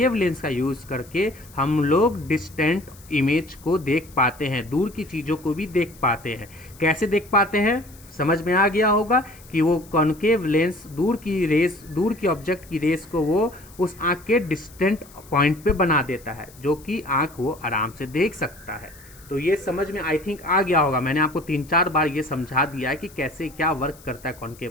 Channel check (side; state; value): left; noise; hiss, 23 dB below the sound